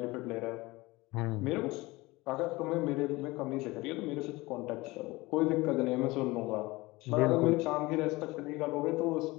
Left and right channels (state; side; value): quieter; right; 21.4 dB